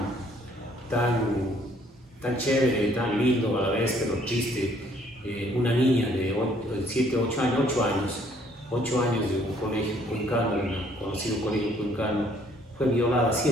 chévere, tan lindo a la vez, pero triste. Una niña de 8 años de un colegio cuencano, un conocido colegio cuencano, fue violada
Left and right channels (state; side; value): normal; both; correlation 0.63